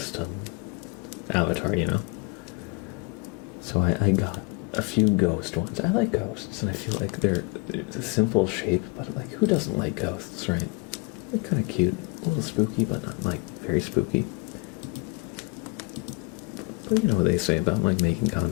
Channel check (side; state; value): right; quieter; 27.9 dB